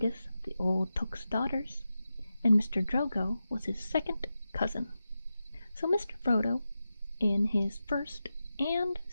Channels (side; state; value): both; inverted; correlation -0.91